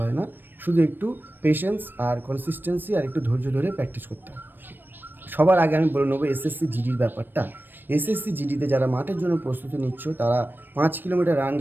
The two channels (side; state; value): left; late; 0.094 ms